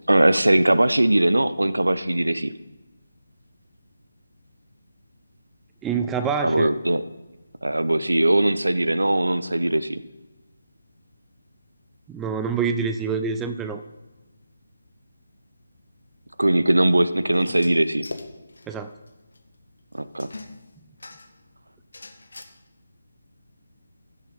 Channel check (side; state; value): both; inverted; correlation -0.91